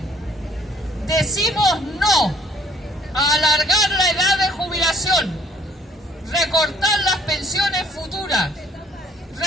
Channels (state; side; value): normal; both; correlation 0.61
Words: Decimos no a alargar la edad de jubilación, recortar las pensiones futuras,